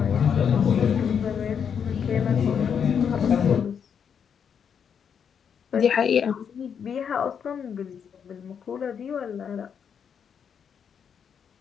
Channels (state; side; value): quieter; right; 7.4 dB